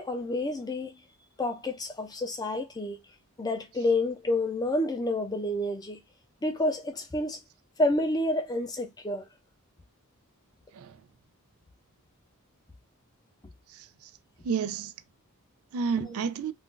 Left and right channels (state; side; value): normal; both; correlation 0.53